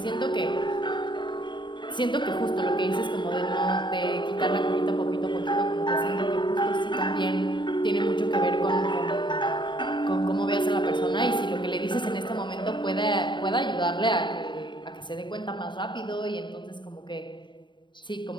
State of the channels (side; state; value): right; late; 0.23 ms